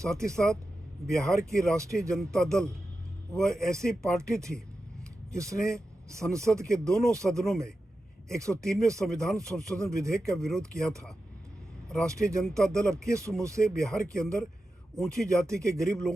ही साथ बिहार की राष्ट्रीय जनता दल वह ऐसी पार्टी थी जिसने संसद के दोनों सदनों में 103वें संविधान संशोधन विधेयक का विरोध किया था। राष्ट्रीय जनता दल अब किस मुंह से बिहार के अंदर ऊंची जाति के गरीब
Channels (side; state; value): both; normal; correlation 0.91